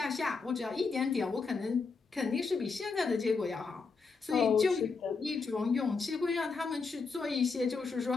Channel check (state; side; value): quieter; right; 4.7 dB